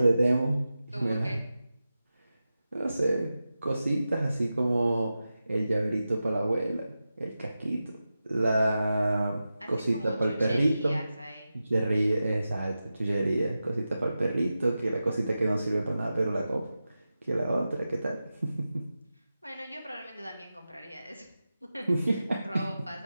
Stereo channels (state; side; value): inverted; both; correlation -0.93